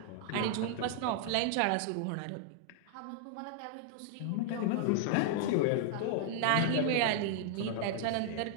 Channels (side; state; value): both; different; correlation -0.01